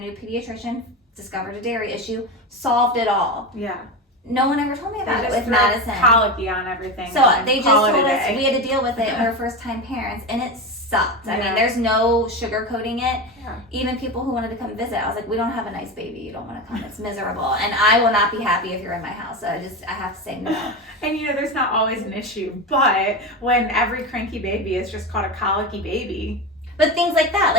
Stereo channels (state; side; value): normal; both; correlation 0.21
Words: pediatrician, discovered a dairy issue, solved it all. Yeah. No one ever told me about it with Madison. Colicky on everything. So they just told us we had to deal with it when we were first time parents, and it sucked. I mean, there's no sugarcoating it. Yeah. Even people who wanted to come visit, I was like, we don't have a nice baby. You don't want to come. It's miserable. And I will not be happy if you're in my house. So I have to say no. And there's not always an issue, but when every cranky baby is just called a colicky baby. But things like that,